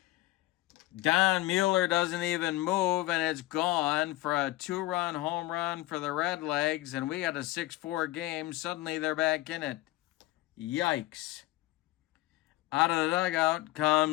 Don Mueller doesn't even move, and it's gone for a 2-run home run for the Redlegs, and we got a 6-4 game. Suddenly they're back in it. Yikes. Out of the dugout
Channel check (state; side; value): quieter; right; 17.8 dB